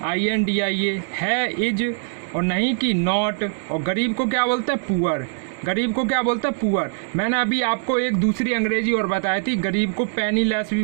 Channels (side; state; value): left; silent; digital silence